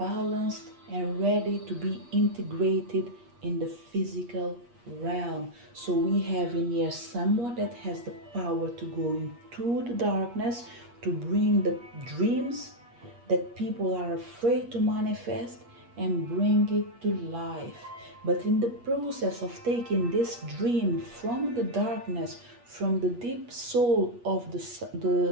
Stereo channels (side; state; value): left; late; 8.4 ms